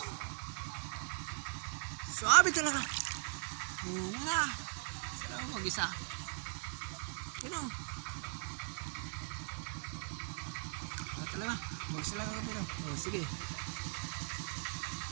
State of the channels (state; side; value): silent; left; 51 dB below the other